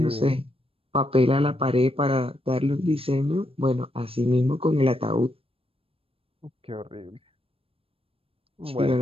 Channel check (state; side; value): late; left; 0.28 ms